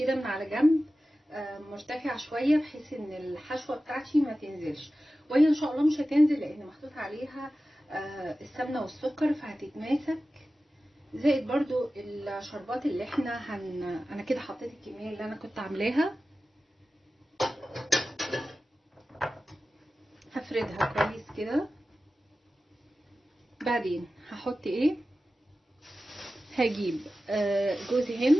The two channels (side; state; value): both; normal; correlation 0.95